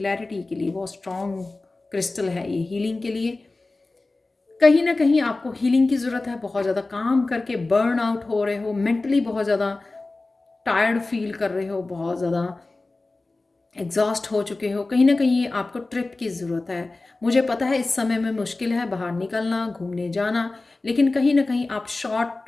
के लिए, बहुत स्ट्रॉन्ग क्रिस्टल है ये हीलिंग के लिए। कहीं ना कहीं आपको हीलिंग की ज़रूरत है, बहुत ज़्यादा काम करके बर्न आउट हो रहे हो, मेंटली बहुत ज़्यादा टायर्ड फील कर रहे हो, बहुत ज़्यादा एग्जॉस्ट हो चुके हो, कहीं ना कहीं आपको ट्रिप की ज़रूरत है। मुझे पता है इस समय में मुश्किल है बाहर निकलना, घूमने जाना, लेकिन कहीं ना कहीं आप शॉर्ट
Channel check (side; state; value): right; quieter; 3.3 dB